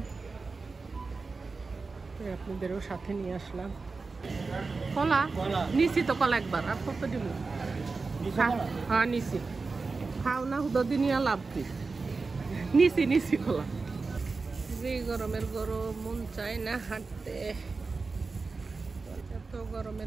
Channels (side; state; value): left; quieter; 4.1 dB